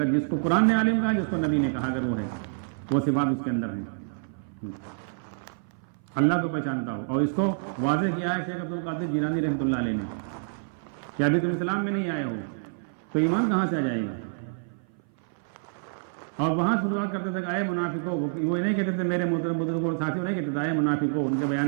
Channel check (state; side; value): silent; left; 57 dB below the other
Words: جس کو قرآن نے عالم کہا، جس کو نبی نے کہا، اگر وہ ہے، وہ صفات اس کے اندر ہیں. اللہ کو پہچانتا ہو. اور اس کو واضح کیا ہے شیخ عبد القادر جیلانی رحمۃ اللہ علیہ نے کہ ابھی تم اسلام میں نہیں آئے ہو تو ایمان کہاں سے آ جائے گا. اور وہاں شروعات کرتے تھے کہ اے منافقو، وہ نہیں کہتے تھے میرے محترم بزرگوں اور ساتھیوں نہیں کہتے تھے اے منافقو. ان کے بیان